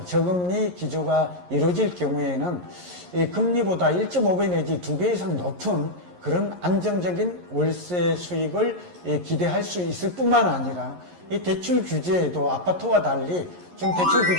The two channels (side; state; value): left; late; 11 ms